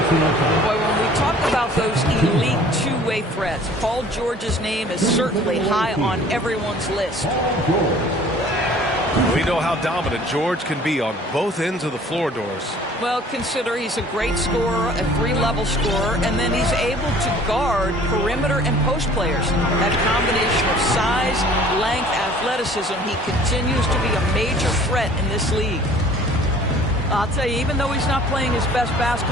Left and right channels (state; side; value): normal; both; correlation 0.51